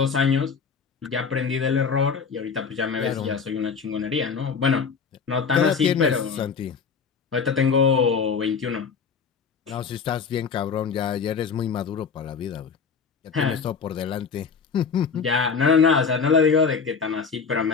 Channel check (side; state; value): right; quieter; 5.8 dB